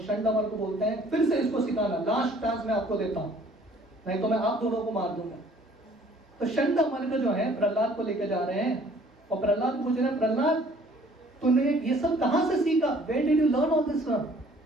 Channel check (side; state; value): both; normal; correlation 0.56